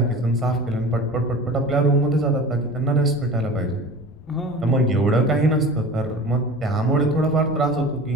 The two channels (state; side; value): noise; left; rumble, 21 dB below the sound